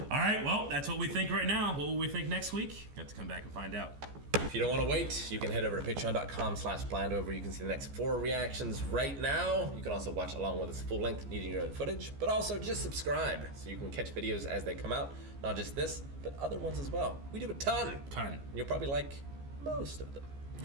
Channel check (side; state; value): left; late; 14 ms